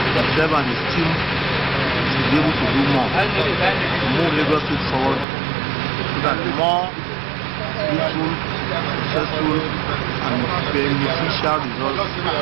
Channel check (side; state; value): left; drops out; at 5.2 s